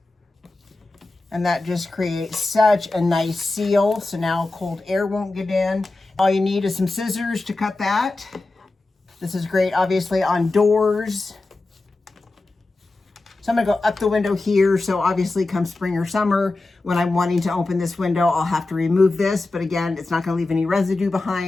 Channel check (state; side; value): quieter; right; 3.2 dB